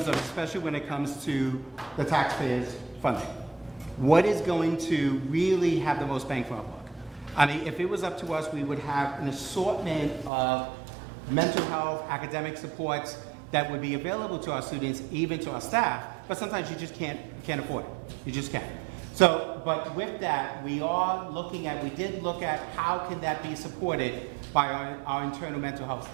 of, especially when it comes to the taxpayers' funding. What is going to really have the most bang for our buck? I mean, if it was up to us, we would have an assortment of mental health, academic supports that would be available to our students, even to our staff, but sometimes you just can't afford it. You just can't. So, but with that, we did look at how can that be supported by our internal mental health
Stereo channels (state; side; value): drops out; left; at 10.3 s